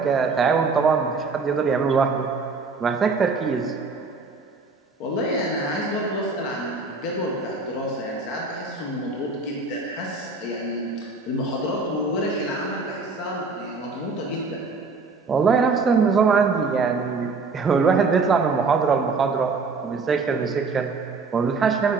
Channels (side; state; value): left; quieter; 4.2 dB